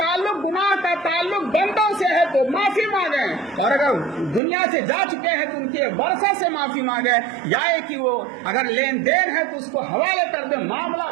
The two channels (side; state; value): left; drops out; at 4.4 s